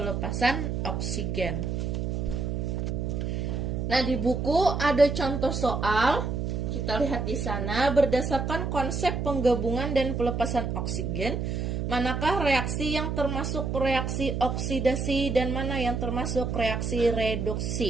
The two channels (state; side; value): noise; right; hum, 2 dB below the sound